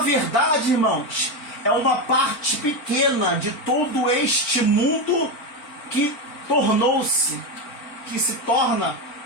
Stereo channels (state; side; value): late; right; 4.4 ms